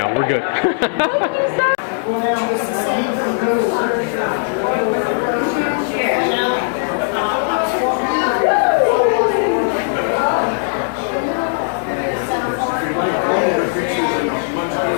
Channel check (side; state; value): right; silent; digital silence